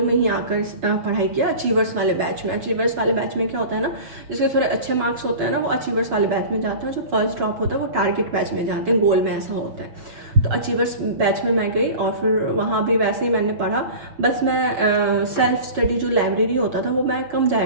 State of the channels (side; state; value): left; late; 6.3 ms